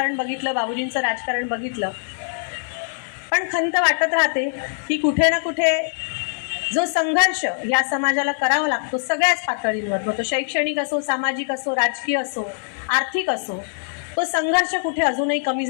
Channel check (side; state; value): right; silent; digital silence